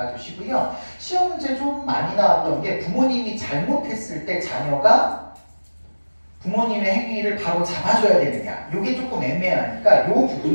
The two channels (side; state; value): both; inverted; correlation -1.00